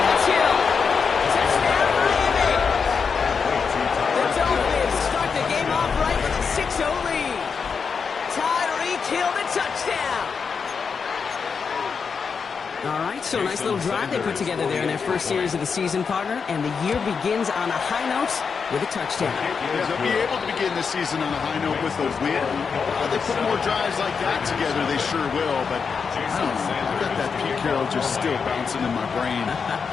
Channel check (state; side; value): quieter; right; 5.8 dB